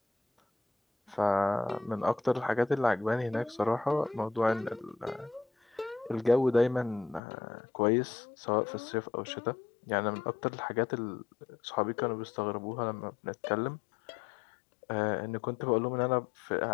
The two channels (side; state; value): right; drops out; at 7.2 s